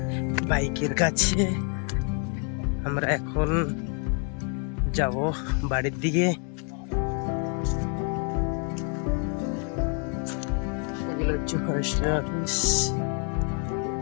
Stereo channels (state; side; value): quieter; right; 39.0 dB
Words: বাইকের কাছে। আমরা এখন যাব বাড়ির দিকে। এগুলো হচ্ছে ফরেস্টের অফিস,